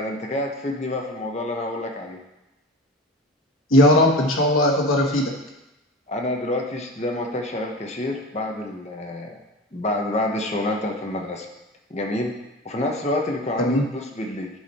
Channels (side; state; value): both; normal; correlation 0.32